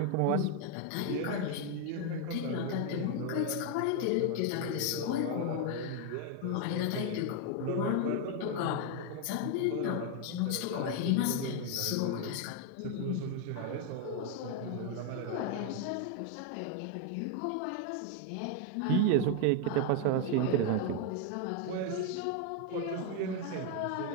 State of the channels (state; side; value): different; both; correlation 0.01